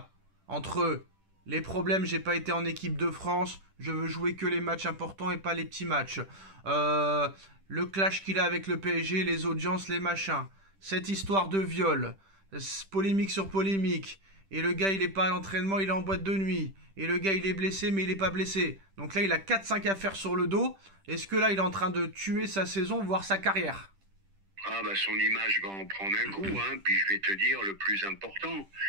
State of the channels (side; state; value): left; late; 10 ms